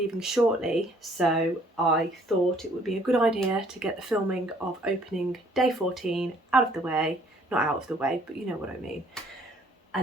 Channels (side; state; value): both; normal; correlation 0.61